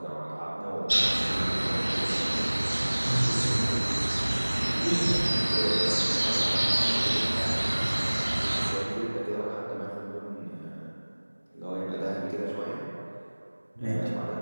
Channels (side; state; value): both; inverted; correlation -1.00